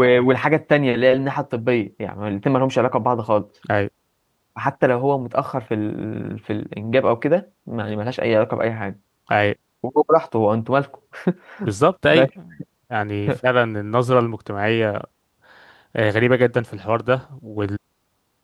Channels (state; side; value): identical; both; correlation 1.00